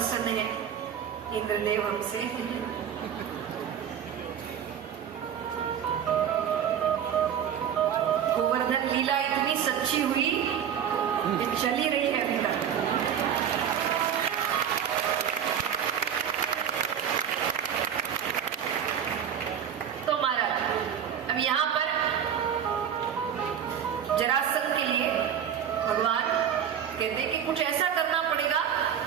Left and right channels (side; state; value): left; quieter; 8.9 dB